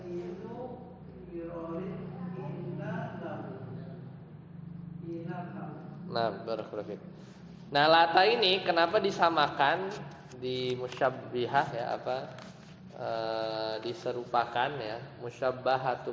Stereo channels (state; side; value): identical; both; correlation 1.00